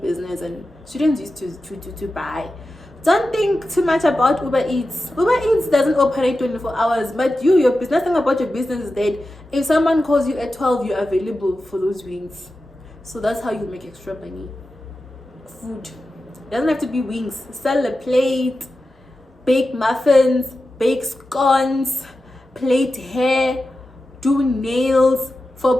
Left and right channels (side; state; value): both; normal; correlation 0.92